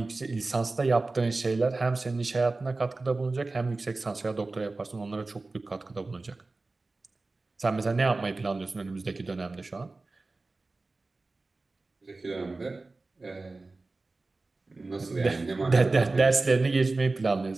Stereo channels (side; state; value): left; quieter; 3.4 dB